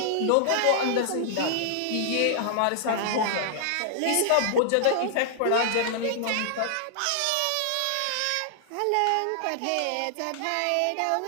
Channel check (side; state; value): both; different; correlation -0.01